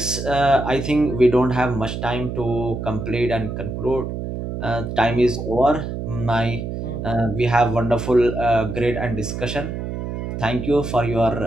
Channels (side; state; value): right; noise; hum, 5 dB below the sound